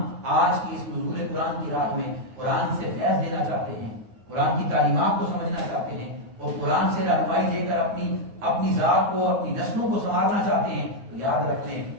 آج کی اس نزول قرآن کی رات میں قرآن سے فیض لینا چاہتے ہیں، قرآن کی تعلیمات کو سمجھنا چاہتے ہیں، اور قرآن سے رہنمائی دے کر اپنی ذات کو، اپنی نسلوں کو سنوارنا چاہتے ہیں، تو یاد رکھ لیں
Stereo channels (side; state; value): left; late; 9.4 ms